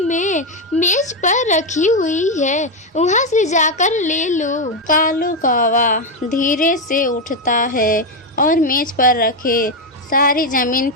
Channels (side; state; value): both; normal; correlation 0.06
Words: में मेज पर रखी हुई है, वहाँ से जाकर ले लो। कालू कौवा धीरे से उठता है और मेज पर रखे सारी जमीन